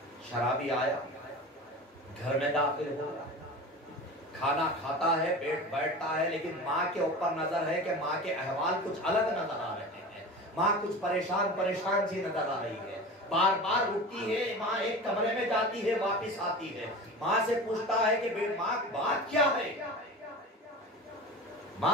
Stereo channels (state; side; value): normal; both; correlation 0.33